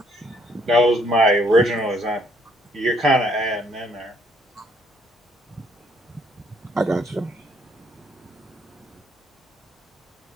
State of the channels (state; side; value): normal; both; correlation 0.67